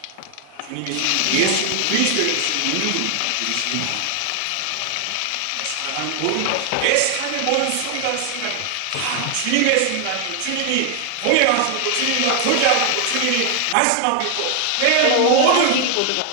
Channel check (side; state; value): both; different; correlation 0.00